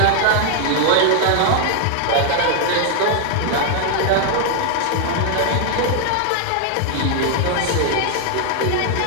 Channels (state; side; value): different; both; correlation 0.00